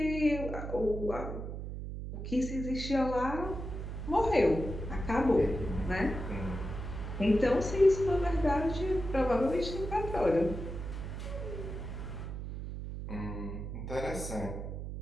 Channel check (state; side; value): noise; right; hum, 6 dB below the sound